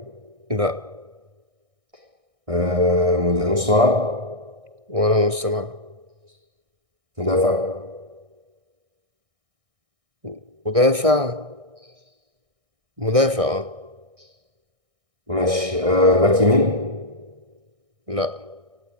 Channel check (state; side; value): late; left; 1.6 ms